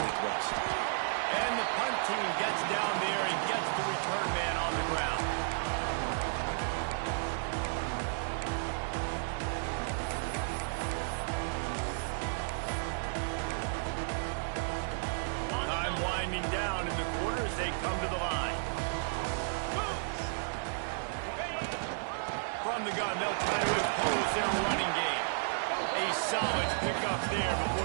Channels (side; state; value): left; silent; digital silence